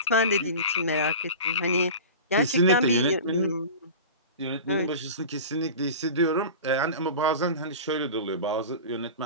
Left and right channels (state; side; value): inverted; both; correlation -0.33